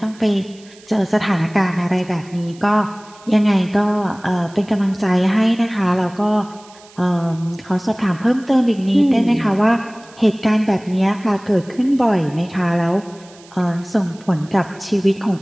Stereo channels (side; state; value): right; noise; hiss, 25 dB below the sound